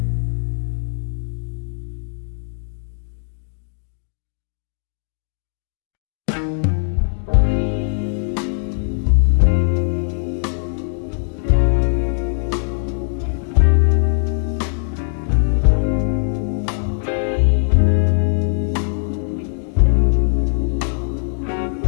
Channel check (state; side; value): silent; right; digital silence